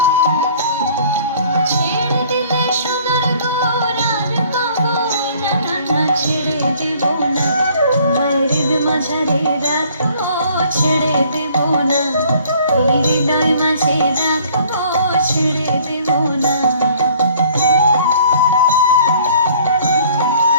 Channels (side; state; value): both; inverted; correlation -0.56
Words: ছেড়ে দিলে সোনার গৌর আর পাবো না, না, না, ছেড়ে দেব না। তোমায় হৃদয় মাঝারে রাখবো, ছেড়ে দেব না। এই হৃদয় মাঝে রাখবো, ছেড়ে দেব না।